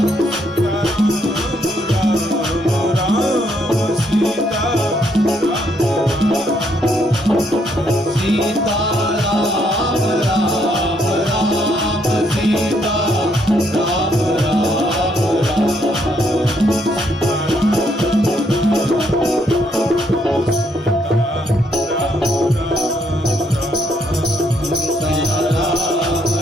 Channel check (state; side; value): normal; both; correlation 0.72